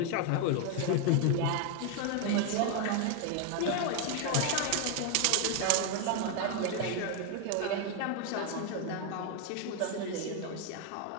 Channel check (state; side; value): different; both; correlation 0.01